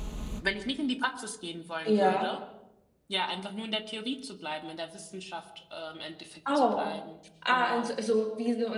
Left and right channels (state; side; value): identical; both; correlation 1.00